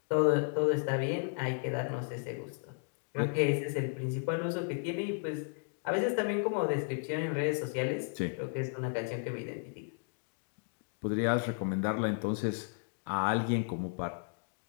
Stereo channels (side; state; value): right; silent; 55 dB below the other